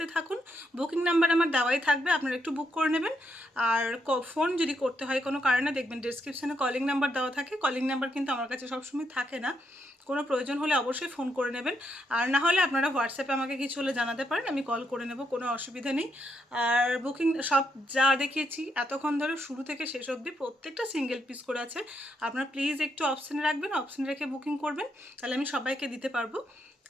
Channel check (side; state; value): both; normal; correlation 0.79